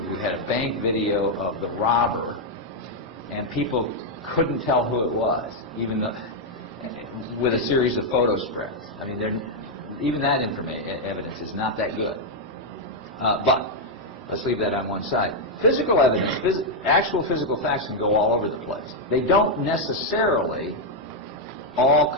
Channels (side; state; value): both; normal; correlation 0.00